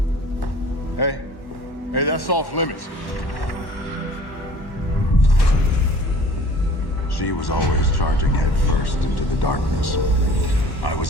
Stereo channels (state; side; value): late; right; 1.1 ms